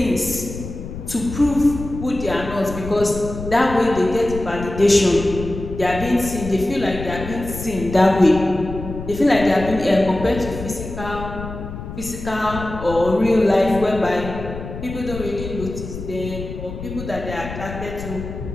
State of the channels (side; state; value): left; noise; rumble, 9 dB below the sound